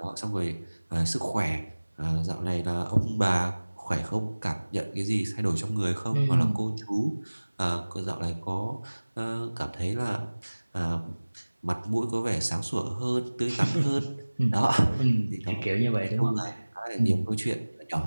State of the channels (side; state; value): both; inverted; correlation -1.00